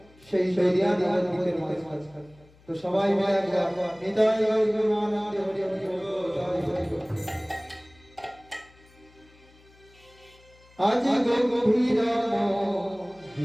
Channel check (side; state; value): left; noise; hum, 28 dB below the sound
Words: সেই দরিয়া নবদ্বীপের মাঝখানে। তো সবাই মিলে একবার নিতাই গৌর আনন্দে হরি হরি বল। আজ গম্ভীর